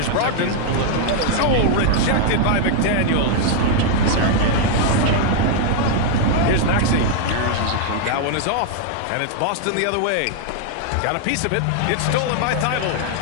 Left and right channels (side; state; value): both; different; correlation 0.00